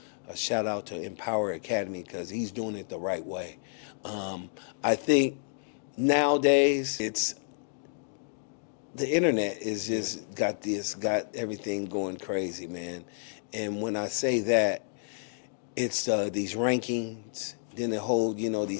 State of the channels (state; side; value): silent; right; digital silence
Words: shout out to Empower Academy, because he's doing it the right way. I think nowadays the internet is just got everything going crazy, man. And when I say that, it's these rankings, then the whole,